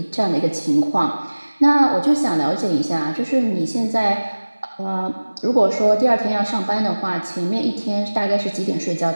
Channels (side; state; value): both; inverted; correlation -1.00